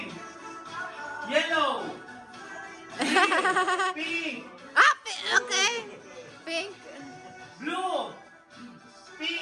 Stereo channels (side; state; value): both; identical; correlation 1.00